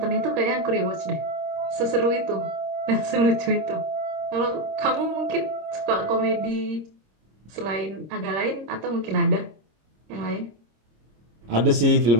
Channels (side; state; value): left; late; 26 ms